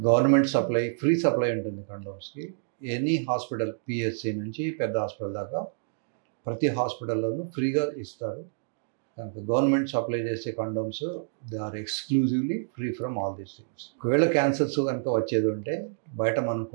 government supply, free supply ఉంటుంది కండోమ్స్కి. ఎనీ హాస్పిటల్, పిహెచ్సి నుంచి పెద్ద హాస్పిటల్ దాకా ప్రతి హాస్పిటల్లోనూ ఫ్రీగా ఇస్తారు. కనుక గవర్నమెంట్ సప్లై చేసే condoms they are exclusively free from all these things. ఒకవేళ క్యాన్సర్స్ కనుక వచ్చేది ఉంటే బయట మనం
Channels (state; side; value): silent; left; digital silence